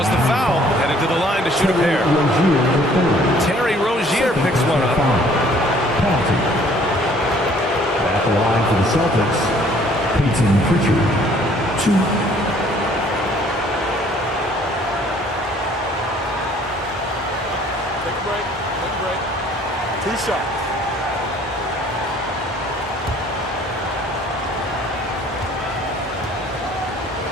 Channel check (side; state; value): both; normal; correlation 0.58